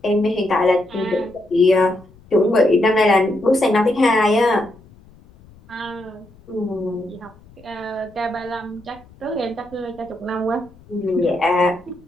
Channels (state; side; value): noise; left; rumble, 25 dB below the sound